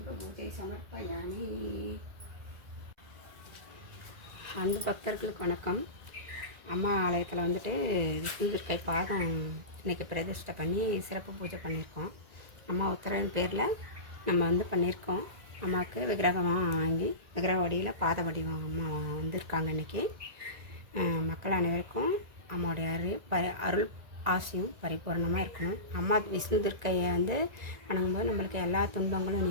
பூஜை சமர்ப்பயாமி. அன்பு பக்தர்களுக்கு வணக்கம். அம்மா ஆலயத்தில் வந்துட்டு விஷ்ணு துர்க்கை பாதம் இன்றைக்கி பிரதிஷ்டை பண்ணி சிறப்பு பூஜை பண்ணியிருக்கோம். அம்மா உத்தரவின் பேரில் நம்ம வந்து பண்ணியிருக்கோம். அம்மாவுக்கு விக்கிரகமாக வாங்கி விக்கிரக வடிவில் பாத வடிவம் அம்மா வந்திருக்காங்க. இன்றைக்கி மக்கள் அனைவருக்கும் அம்மாவுடைய அருள் ஆசையும் பரிபூர்ணமாக இருக்கணும். அம்மா விஷ்ணு துர்க்கையை வந்து வணங்கும்போது நம்மளுக்கு எல்லா துன்பங்களும்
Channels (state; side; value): late; left; 1.9 ms